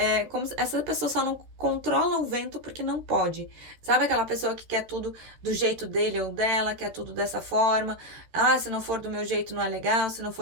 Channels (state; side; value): late; left; 14 ms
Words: como se essa pessoa só não controla o vento porque não pode. Sabe aquela pessoa que quer tudo do jeito dele ou dela, quer tudo dessa forma? Ah, se não for do meu jeito não é legal, se não